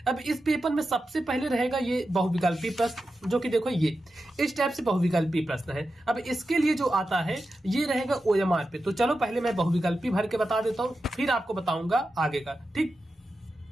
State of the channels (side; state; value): both; normal; correlation 0.91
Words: अब इस पेपर में सबसे पहले रहेगा ये बहुविकल्पी प्रश्न, जो कि देखो ये इस टाइप से बहुविकल्पी प्रश्न है। अब इसके लिए जो आता है ये रहेगा ओएमआर पे। तो चलो पहले मैं बहुविकल्पी भर के बता देता हूं, फिर आपको बताऊंगा आगे का। ठीक,